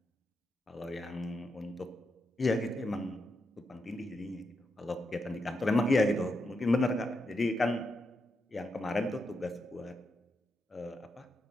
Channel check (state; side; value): normal; both; correlation 0.84